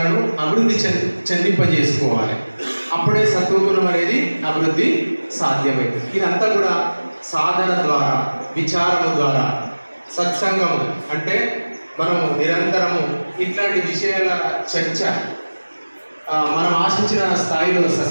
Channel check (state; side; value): inverted; both; correlation -1.00